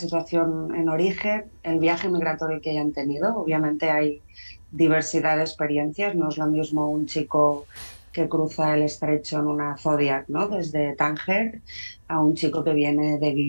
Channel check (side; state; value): both; inverted; correlation -1.00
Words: en origen, el viaje migratorio que hayan tenido. Obviamente hay diversidad de experiencias. No es lo mismo un chico que cruza el estrecho en una Zodiac, ¿no? Desde Tánger, a un chico que viene